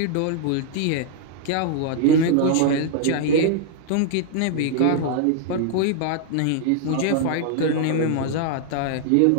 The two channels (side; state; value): both; different; correlation -0.01